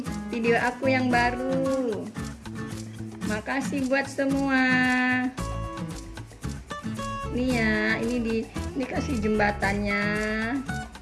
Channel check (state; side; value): identical; both; correlation 1.00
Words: video aku yang baru. Makasih buat semua. Nih ya, ini kasih jembatannya.